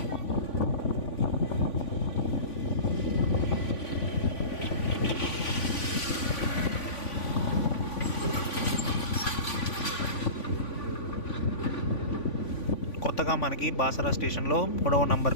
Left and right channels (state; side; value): late; right; 3.5 ms